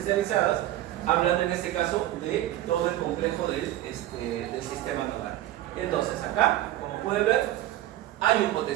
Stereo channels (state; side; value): quieter; left; 14.1 dB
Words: hablando en este caso de todo el complejo del sistema nodal. Entonces acá, como pueden ver, hay un